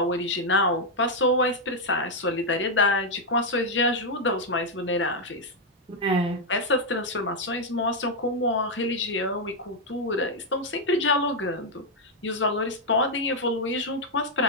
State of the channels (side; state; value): both; normal; correlation 0.00